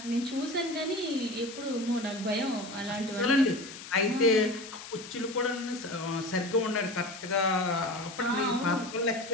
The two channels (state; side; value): noise; left; hiss, 13 dB below the sound